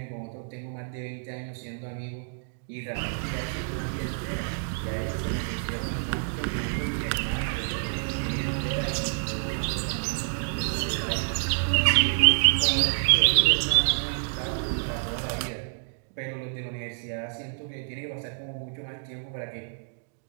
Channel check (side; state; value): left; silent; digital silence